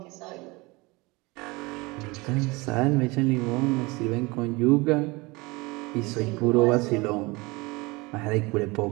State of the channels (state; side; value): quieter; left; 24.3 dB